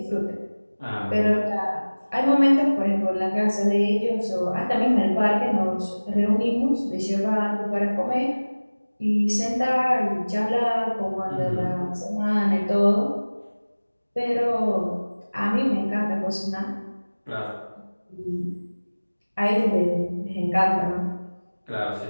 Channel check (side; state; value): both; inverted; correlation -1.00